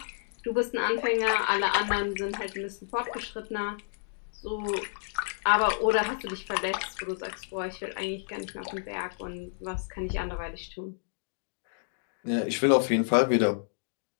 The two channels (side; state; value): right; silent; digital silence